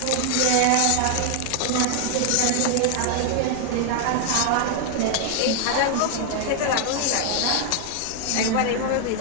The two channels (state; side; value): different; both; correlation 0.00